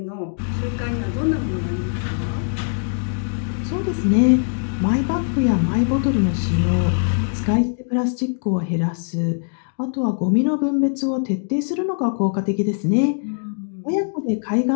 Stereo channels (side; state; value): right; silent; digital silence